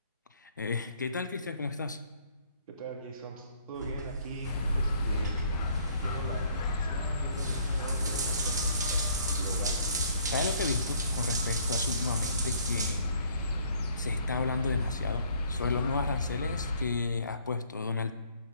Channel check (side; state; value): both; inverted; correlation -0.62